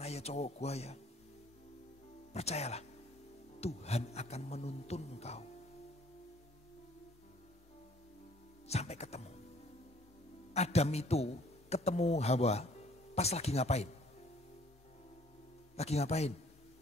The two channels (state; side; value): normal; both; correlation 0.58